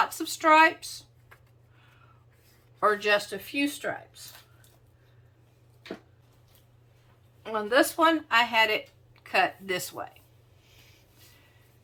of stripes or just a few stripes. On this one, I had it cut this way.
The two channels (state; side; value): identical; both; correlation 1.00